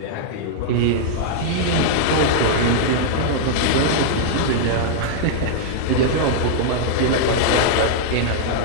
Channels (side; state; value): both; different; correlation -0.01